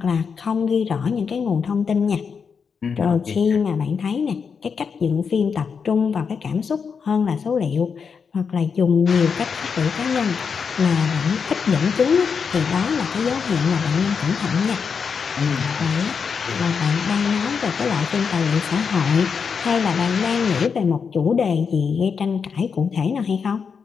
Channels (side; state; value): right; quieter; 6.0 dB